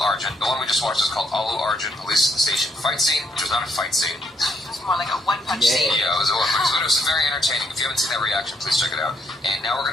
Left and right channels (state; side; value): normal; both; correlation 0.74